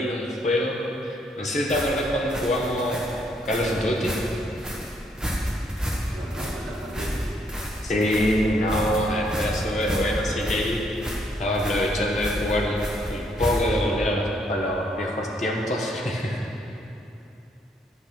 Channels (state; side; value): normal; both; correlation 0.71